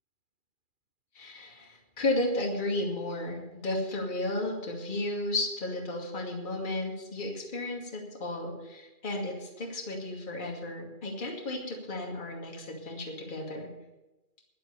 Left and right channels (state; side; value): late; right; 2.4 ms